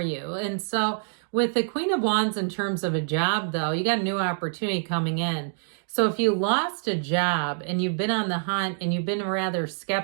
And so with the Queen of Wands in terms of a job, though, you got a new opportunity coming in. So if you lost a job and you've been on the hunt and you've been rather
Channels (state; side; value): silent; left; digital silence